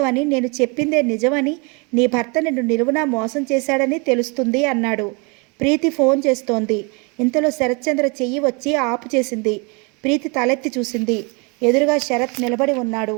నేను చెప్పిందే నిజమని, నీ భర్త నిన్ను నిలువునా మోసం చేశాడని తెలుస్తుంది అన్నాడు. ప్రీతి ఫోన్ చేస్తోంది. ఇంతలో శరత్చంద్ర చెయ్యి వచ్చి ఆపు చేసింది. ప్రీతి తలెత్తి చూసింది. ఎదురుగా శరత్ నిలబడి ఉన్నాడు.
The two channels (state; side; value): quieter; left; 31.4 dB